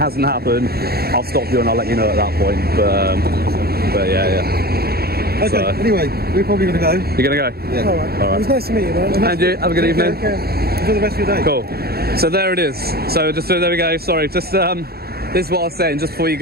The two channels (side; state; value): left; late; 0.45 ms